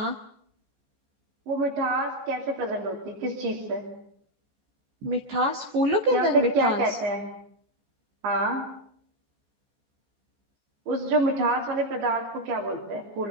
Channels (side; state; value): left; late; 14 ms